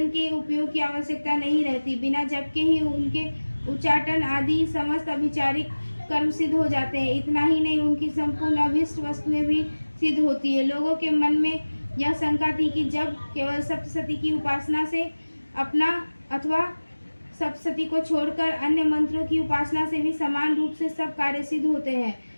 के उपयोग की आवश्यकता नहीं रहती। बिना जप के ही उनके उच्चाटन आदि समस्त अभिचारिक कर्म सिद्ध हो जाते हैं। इतना ही नहीं, उनकी संपूर्ण अभीष्ट वस्तुएं भी सिद्ध होती है। लोगों के मन में यह शंका थी कि जब केवल सप्तशती की उपासना से अपना अथवा सप्तशती को छोड़कर अन्य मंत्रों की उपासना से भी समान रूप से सब कार्य सिद्ध होते हैं,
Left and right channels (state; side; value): inverted; both; correlation -1.00